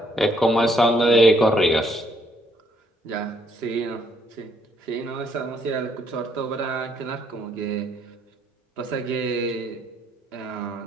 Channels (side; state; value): both; normal; correlation 0.69